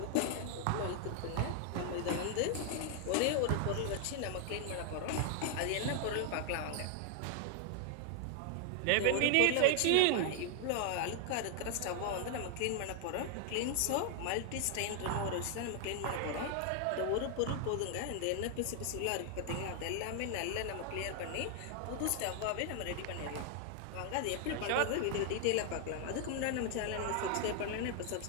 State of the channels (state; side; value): different; both; correlation 0.00